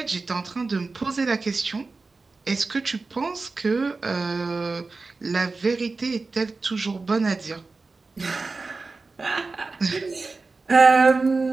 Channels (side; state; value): left; quieter; 3.9 dB